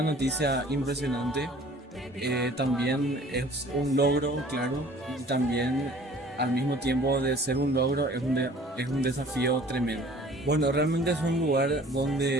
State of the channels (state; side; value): normal; both; correlation 0.50